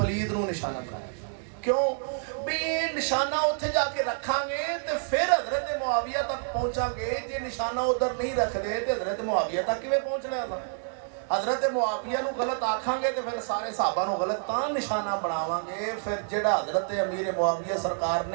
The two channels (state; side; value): silent; left; 59 dB below the other